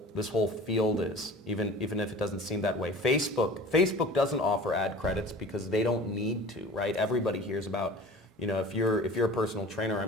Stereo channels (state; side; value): normal; both; correlation 0.41